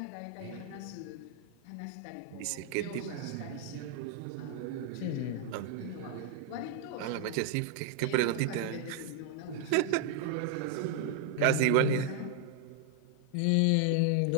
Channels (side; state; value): both; different; correlation 0.00